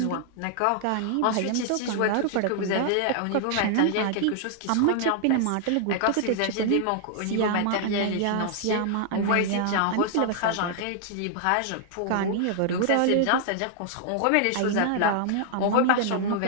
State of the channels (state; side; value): different; both; correlation -0.01